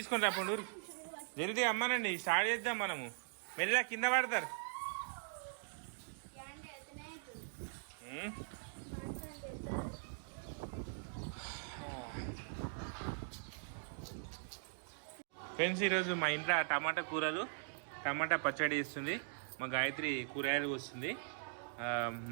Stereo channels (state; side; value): silent; left; digital silence